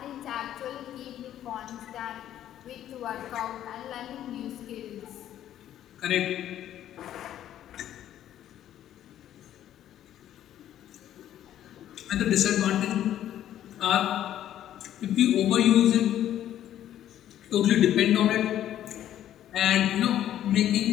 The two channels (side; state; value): right; quieter; 11.6 dB